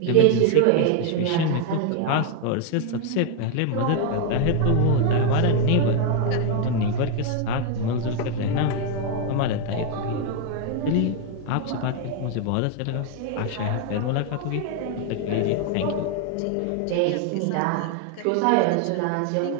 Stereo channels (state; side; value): different; both; correlation 0.01